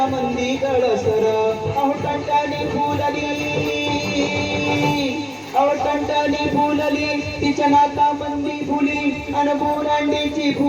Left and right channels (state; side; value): identical; both; correlation 1.00